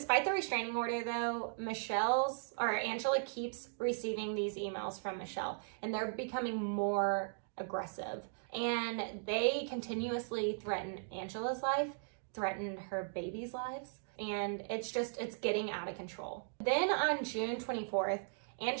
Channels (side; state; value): left; silent; digital silence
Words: the restraining order, though, Angela keeps receiving these emails from Michelle, and they're becoming more aggressive. And they continuously threaten Angela's life, threaten her baby's lives, and it's getting out of control. Then on June 24th,